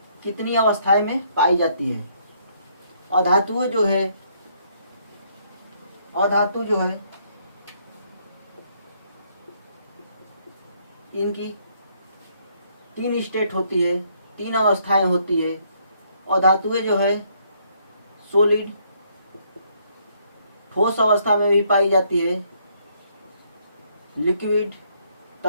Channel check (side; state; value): both; inverted; correlation -0.69